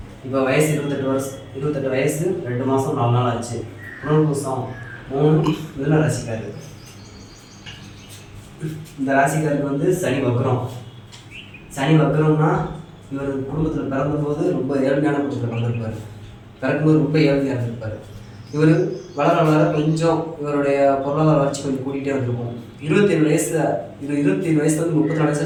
இப்போ வயசு 28 வயசு 2 மாதம் 4 நாள் ஆச்சு. புனர்பூசம் 3 மிதுன ராசிக்காரு. இந்த ராசிக்காருக்கு வந்து சனி வக்ரம். சனி வக்ரம்னா இவர் குடும்பத்தில் பிறந்தபோது ரொம்ப ஏழ்மையான குடும்பத்தில் பிறந்திருப்பார். பிறக்கும்போது ரொம்ப ஏழ்மையாக இருந்திருப்பார். இவர் வளர வளர கொஞ்சம் இவருடைய பொருளாதார வளர்ச்சி கொஞ்சம் கூட்டிகிட்டே வந்திருக்கும். 27 வயசில் இது 27 வயசுல வந்து 34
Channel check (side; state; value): both; identical; correlation 1.00